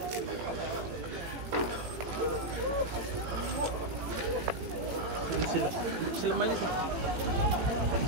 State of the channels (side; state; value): left; late; 18 ms